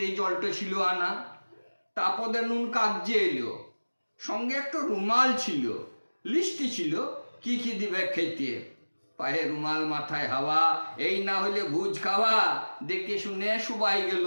জলটা ছিল আনা। তারপরে নুন কাগজে এলো, সঙ্গে একটা রুমাল ছিল, লিস্টি ছিল কি কি দিবে খেতে। পায়ে রুমাল মাথায় হাওয়া, এই না হলে ভুজ খাওয়া, দেখে শুনে সবাই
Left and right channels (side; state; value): both; inverted; correlation -1.00